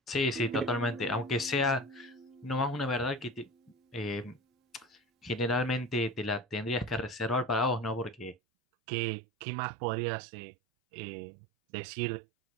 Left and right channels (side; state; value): left; drops out; at 8.3 s